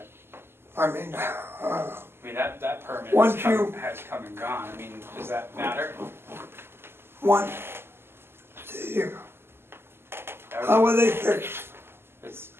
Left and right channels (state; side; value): late; left; 0.12 ms